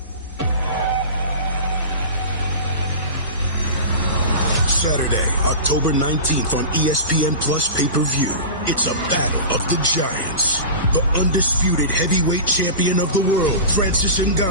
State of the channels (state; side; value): inverted; both; correlation -0.30